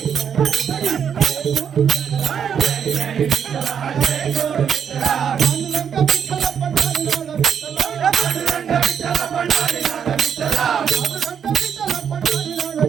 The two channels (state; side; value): quieter; left; 7.8 dB